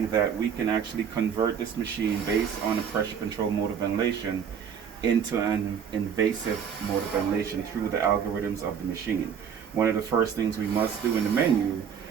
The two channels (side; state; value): left; quieter; 7.6 dB